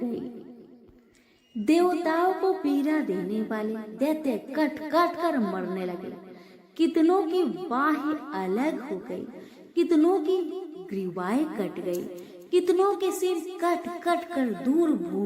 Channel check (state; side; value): identical; both; correlation 1.00